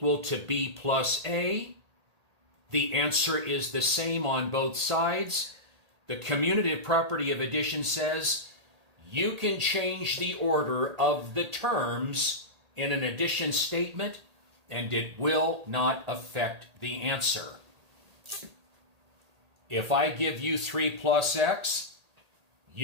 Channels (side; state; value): left; late; 1.8 ms